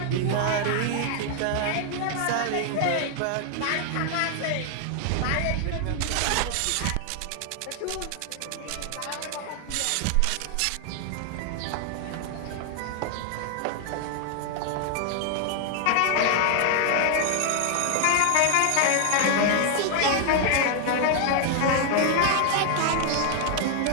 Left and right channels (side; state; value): both; different; correlation 0.00